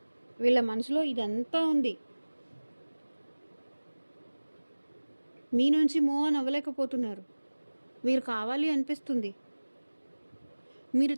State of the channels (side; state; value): both; inverted; correlation -1.00